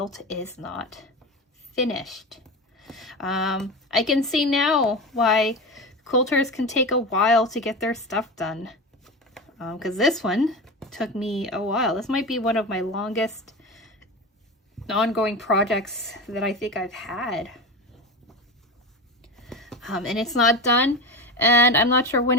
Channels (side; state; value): both; normal; correlation 0.25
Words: is not finished. I can see now why quilters can take a while to get their stuff done, because this one took me a while. This might be one of my longest ongoing projects that I think I've had, and it's not done, and I'm not sure